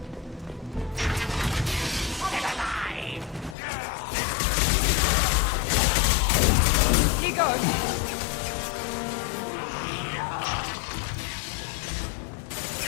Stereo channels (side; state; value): right; drops out; at 3.6 s